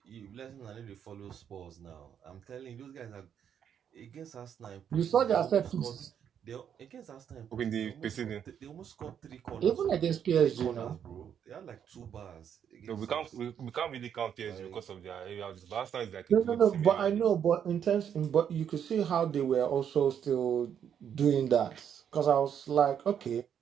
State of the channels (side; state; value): left; quieter; 8.6 dB